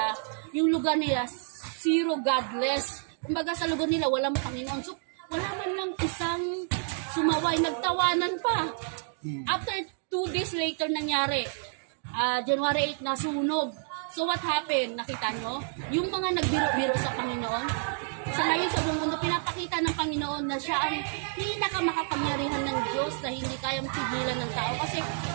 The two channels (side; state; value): left; silent; 58 dB below the other